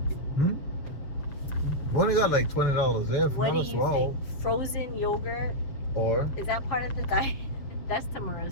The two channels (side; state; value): right; late; 7.5 ms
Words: We only got like $20 there. What do Not as you well. think? Frozen yogurt, Or is that part of the diet? That's